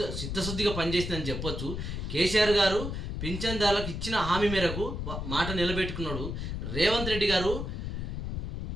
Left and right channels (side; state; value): left; noise; rumble, 4 dB below the sound